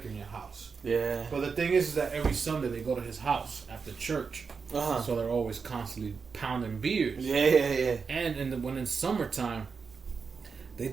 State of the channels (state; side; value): quieter; left; 5.4 dB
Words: in your house. Yeah. But the thing is that every Sunday they go to his house after church. So they're always constantly pounding beers. Yeah. And when in summertime, they